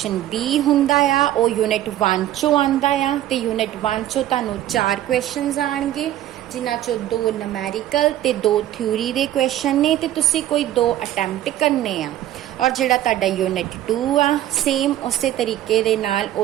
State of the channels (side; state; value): left; quieter; 13.0 dB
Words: B ਹੁੰਦਾ ਆ ਉਹ ਯੂਨਿਟ 1 ਚੋਂ ਆਉਂਦਾ ਆ ਤੇ ਯੂਨਿਟ 1 ਚੋਂ ਤੁਹਾਨੂੰ 4 ਕੁਐਸਚਨਸ ਆਣਗੇ, ਜਿਨ੍ਹਾਂ ਚੋਂ 2 ਨੂਮੈਰੀਕਲ ਤੇ 2 ਥਿਊਰੀ ਦੇ ਕੁਐਸਚਨ ਨੇ ਤੇ ਤੁਸੀਂ ਕੋਈ 2 ਅਟੈਂਪਟ ਕਰਨੇ ਆ। ਔਰ ਜਿਹੜਾ ਤੁਹਾਡਾ ਯੂਨਿਟ 2 ਆ, ਸੇਮ ਉਸੇ ਤਰੀਕੇ ਦੇ ਨਾਲ